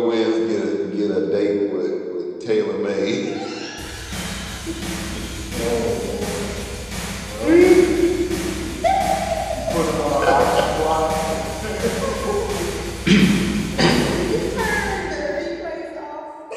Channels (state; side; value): identical; both; correlation 1.00